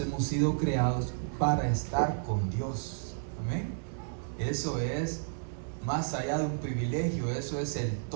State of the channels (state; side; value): silent; left; digital silence